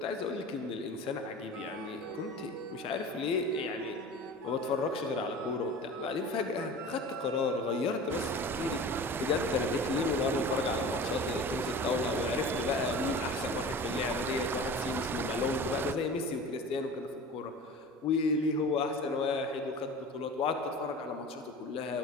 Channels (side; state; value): both; normal; correlation 0.37